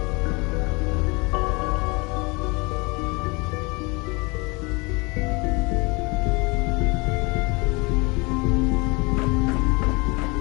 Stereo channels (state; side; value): quieter; right; 27.7 dB